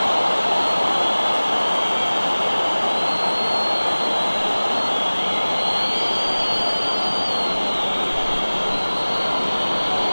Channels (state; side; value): inverted; both; correlation -1.00